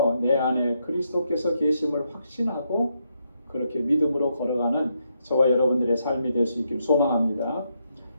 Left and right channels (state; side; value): inverted; both; correlation -0.80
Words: 내 안에 그리스도께서 계심을 확신하고 그렇게 믿음으로 걸어가는 저와 여러분들의 삶이 될 수 있길 소망합니다.